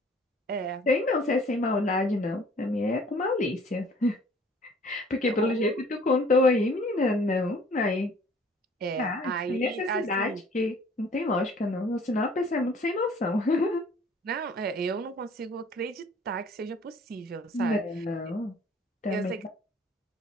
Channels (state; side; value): normal; both; correlation 0.54